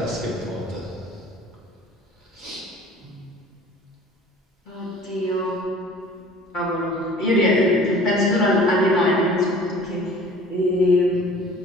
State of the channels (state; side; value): normal; both; correlation 0.48